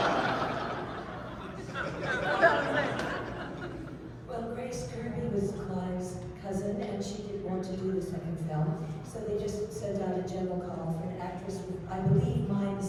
Well, Grace Kirby was Clive's cousin, and she didn't want to do the second film, so they just sent out a general call for an actress with, I believe, mime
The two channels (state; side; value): identical; both; correlation 1.00